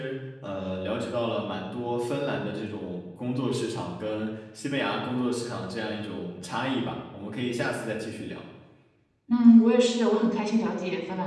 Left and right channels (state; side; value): identical; both; correlation 1.00